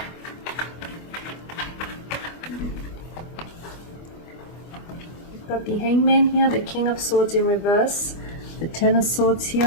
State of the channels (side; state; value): right; late; 25 ms